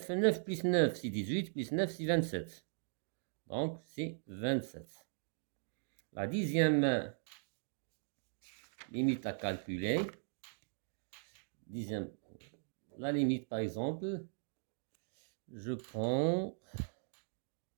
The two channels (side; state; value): left; silent; digital silence